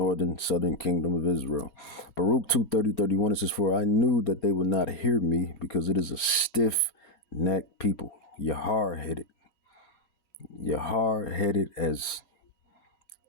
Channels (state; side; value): late; right; 4.3 ms